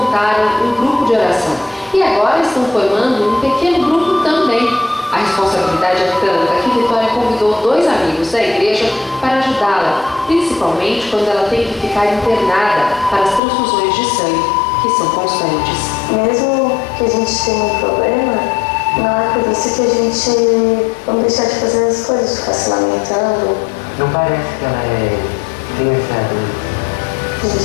um grupo de oração e agora estão formando um pequeno grupo também. A responsabilidade é tanta que Vitória convidou 2 amigos da igreja para ajudá-la, principalmente quando ela tem que ficar internada para as transfusões de sangue, que são constantes. Mesmo que a gente tenha um problema, não é por isso que a gente não deixar de fazer as coisas, ficar se lamentando. Não parece que ela tem essa dor. A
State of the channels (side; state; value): right; drops out; at 13.4 s